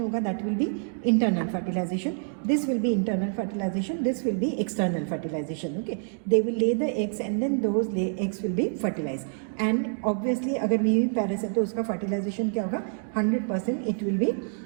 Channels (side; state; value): left; silent; 60 dB below the other